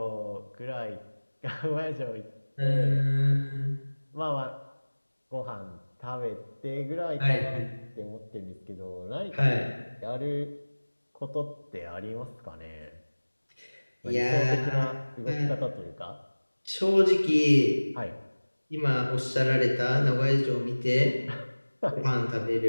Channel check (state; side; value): inverted; both; correlation -1.00